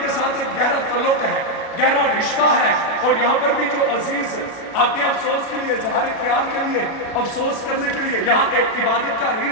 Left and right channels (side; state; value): right; late; 36 ms